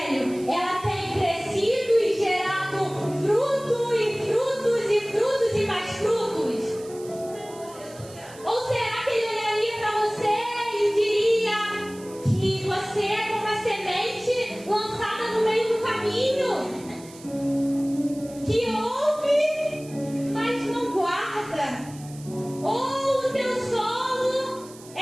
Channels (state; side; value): noise; right; hiss, 20 dB below the sound